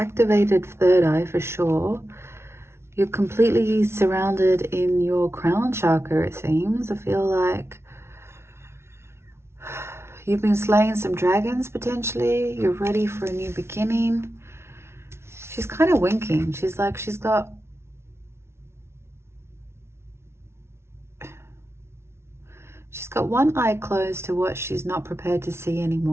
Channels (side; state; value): left; late; 0.12 ms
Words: third eye for sure. You're completely surrounded in your crown chakra, it seems. I feel like you've been slaying some dragons, potentially. You're ready for a new beginning. She's kind of winking. She's like, she's got one eye closed to what she's not prepared to see